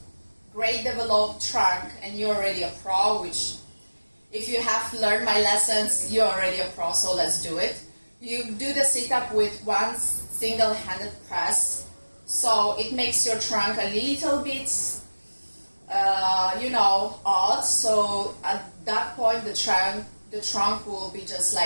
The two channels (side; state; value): both; inverted; correlation -1.00